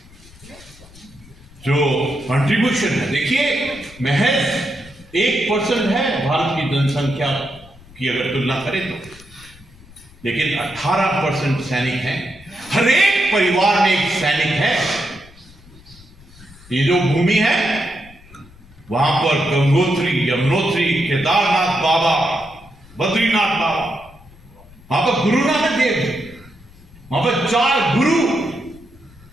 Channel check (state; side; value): noise; left; rumble, 23 dB below the sound